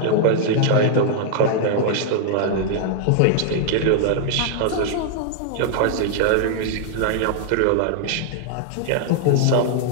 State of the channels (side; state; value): both; different; correlation -0.01